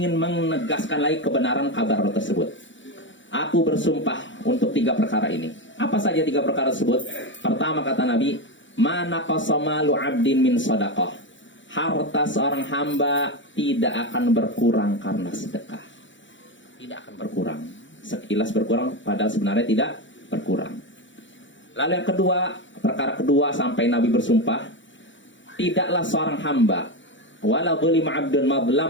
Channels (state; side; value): late; right; 0.54 ms